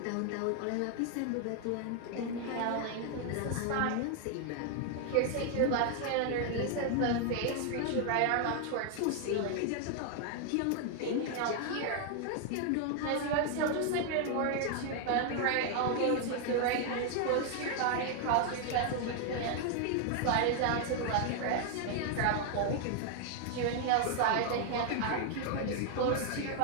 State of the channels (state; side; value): different; both; correlation 0.00